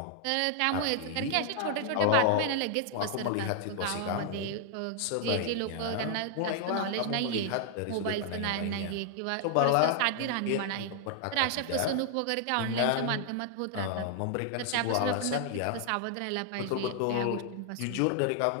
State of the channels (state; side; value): different; both; correlation 0.00